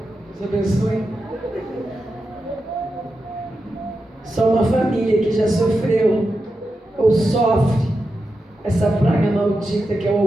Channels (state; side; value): normal; both; correlation 0.89